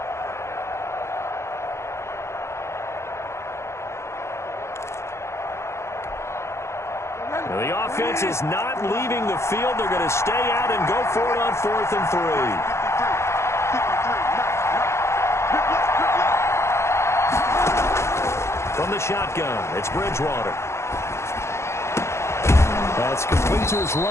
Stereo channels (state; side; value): late; right; 0.13 ms